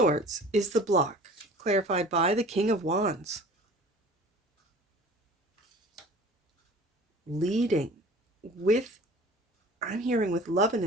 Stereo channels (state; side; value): normal; both; correlation 0.44